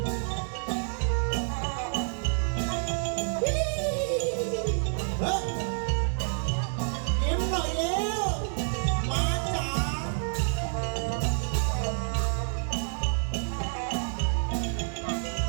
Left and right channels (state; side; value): silent; left; digital silence